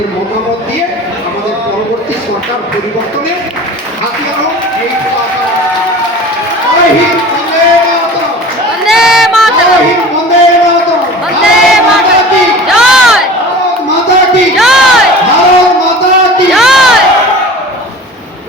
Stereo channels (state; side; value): normal; both; correlation 0.39